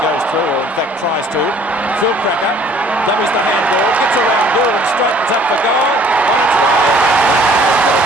through, or in fact tries to. Phil Cracker, that was the handball. Gets around goal and straightens up the goal.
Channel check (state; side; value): normal; both; correlation 0.56